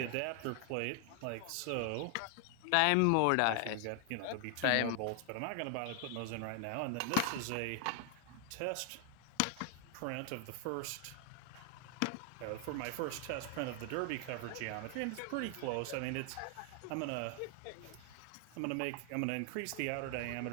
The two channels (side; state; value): both; different; correlation 0.00